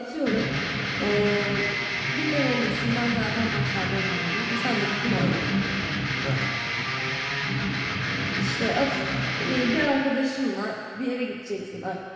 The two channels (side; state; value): both; identical; correlation 1.00